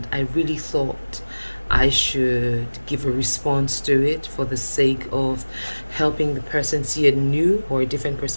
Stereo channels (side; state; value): both; inverted; correlation -1.00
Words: I really thought I should give a response to it for the sake of helping the person see a new or a different